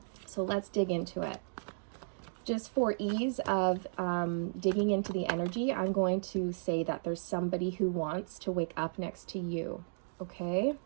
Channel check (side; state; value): left; silent; digital silence